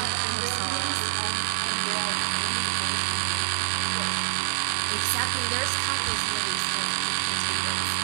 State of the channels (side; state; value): left; silent; digital silence